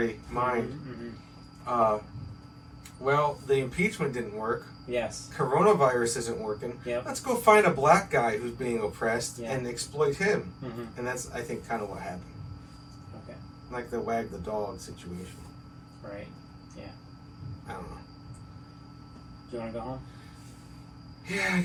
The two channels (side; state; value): both; identical; correlation 1.00